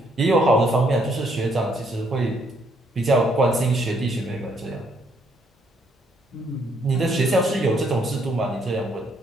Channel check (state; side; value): normal; both; correlation 0.70